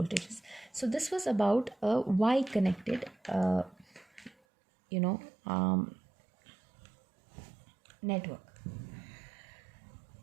So this was about a Y connected network.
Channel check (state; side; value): drops out; left; at 4.4 s